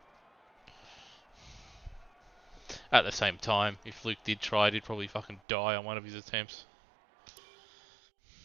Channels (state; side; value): drops out; left; at 5.4 s